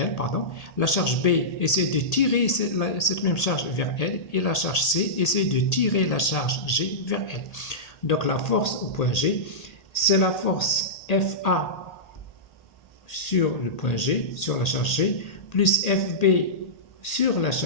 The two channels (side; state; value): right; late; 1.8 ms